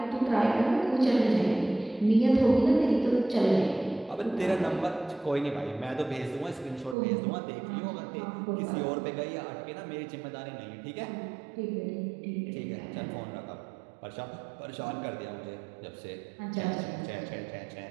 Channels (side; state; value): left; drops out; at 7.0 s